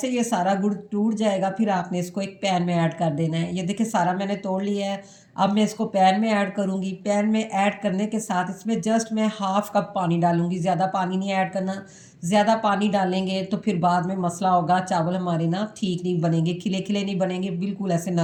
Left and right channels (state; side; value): identical; both; correlation 1.00